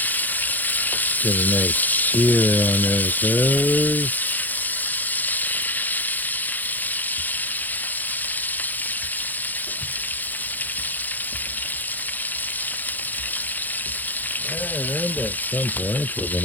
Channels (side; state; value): right; late; 0.084 ms